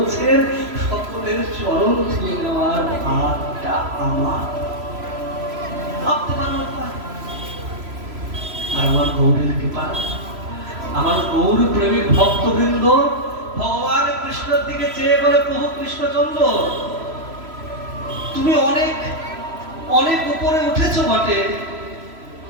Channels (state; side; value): late; left; 3.0 ms